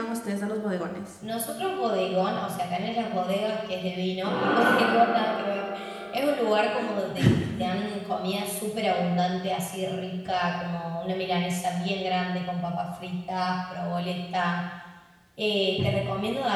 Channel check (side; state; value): both; identical; correlation 1.00